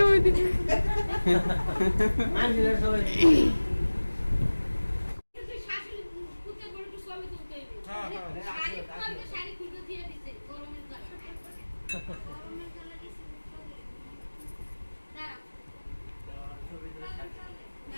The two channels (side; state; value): both; inverted; correlation -1.00